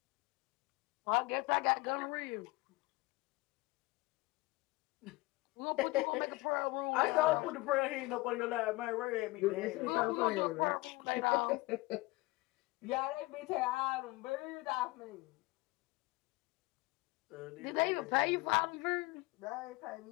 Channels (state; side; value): quieter; right; 22.2 dB